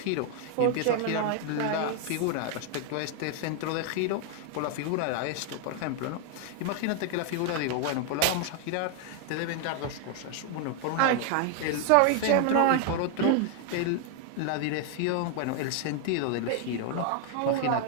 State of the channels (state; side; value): different; both; correlation 0.00